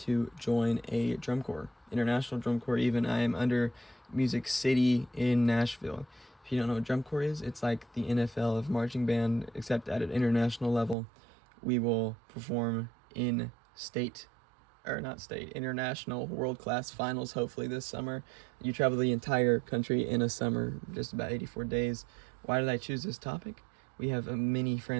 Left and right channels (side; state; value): left; drops out; at 11.0 s